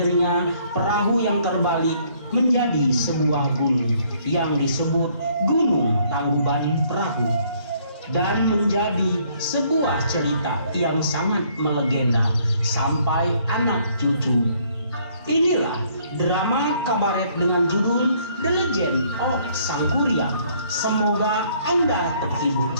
perahu yang terbalik menjadi sebuah gunung yang disebut Gunung Tangkuban Perahu, dan menjadi sebuah cerita yang sangat melegenda sampai anak cucu. Inilah drama kabaret dengan judul The Legend of Sang Kuryang. Semoga Anda terhibur.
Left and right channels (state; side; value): inverted; both; correlation -0.64